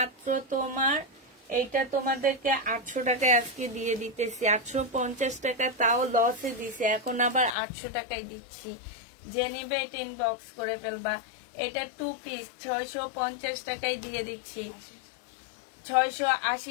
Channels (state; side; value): drops out; right; at 7.6 s